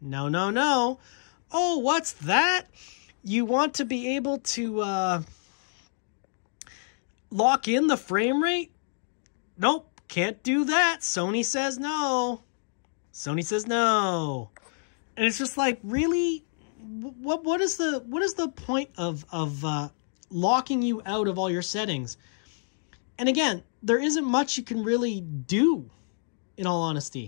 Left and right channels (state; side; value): silent; right; digital silence